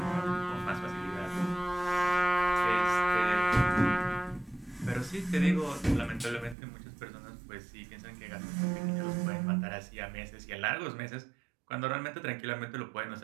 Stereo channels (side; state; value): left; drops out; at 6.6 s